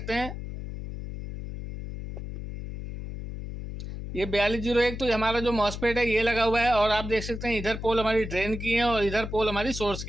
हैं। ये 4201 तो हमारा जो मॉसफेट है ये लगा हुआ है, और आप देख सकते हैं इधर पोल हमारी ड्रेन की है और इधर पोल हमारी सोर्स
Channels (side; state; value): left; noise; hum, 8 dB below the sound